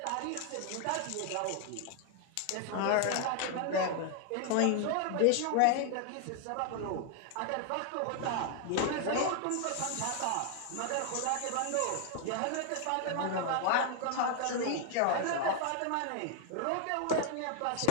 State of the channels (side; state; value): both; different; correlation 0.00